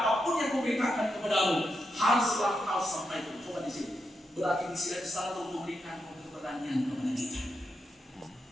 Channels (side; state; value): both; normal; correlation 0.85